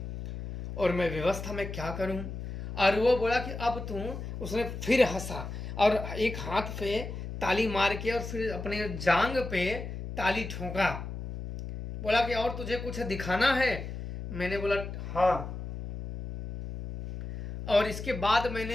और मैं व्यवस्था में क्या करूं। और वो बोला कि अब तू, उसने फिर हंसा और एक हाथ पे ताली मार के और फिर अपने जांग पे ताली ठोका, बोला कि और तुझे कुछ दिखाना है। मैंने बोला हाँ, और इसके बाद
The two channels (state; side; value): noise; left; hum, 8 dB below the sound